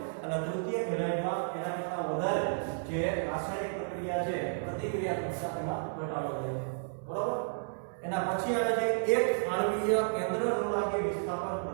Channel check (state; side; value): silent; left; 56 dB below the other